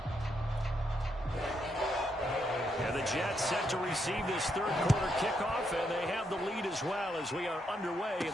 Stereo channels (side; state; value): both; normal; correlation 0.78